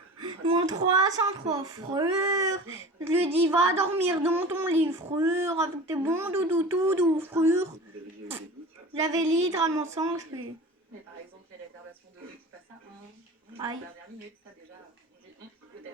Mon 303 frère, je lui dis va dormir dans ton lit frère, avec tes bons doudous tout doux frère. Vous avez déjà eu des doutes sur J'avais littéralement 100 HP. Mais par exemple, les réservations de qui passent à 1, Aïe. dernière minute, ça déjà, on dit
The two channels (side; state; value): both; normal; correlation 0.36